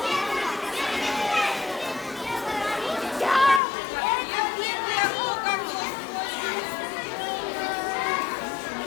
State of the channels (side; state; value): right; drops out; at 3.6 s